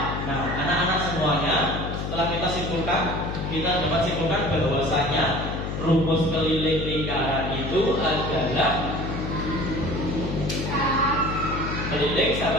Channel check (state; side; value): noise; left; hum, 4 dB below the sound